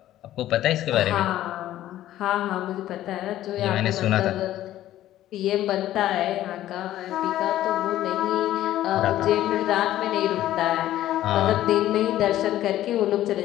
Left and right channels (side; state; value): right; quieter; 13.5 dB